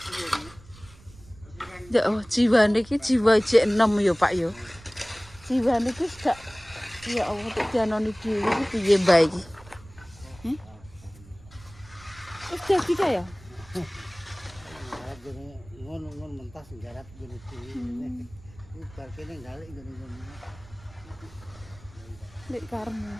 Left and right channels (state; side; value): noise; right; rumble, 22 dB below the sound